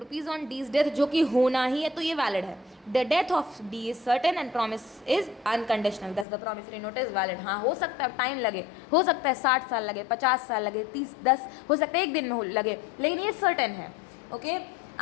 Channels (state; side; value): drops out; right; at 6.2 s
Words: on D's death, जो कि होना ही है, तो ये वैलिड है. The death of D is certain and promise is unconditional, thus the promissory note is valid. हाँ, हो सकता है टाइम लगे, हो सकता है 60 साल लगे, 50 साल लगे, 10 हो सकता है एक दिन में लगे, लेकिन ये सर्टेन है. Okay,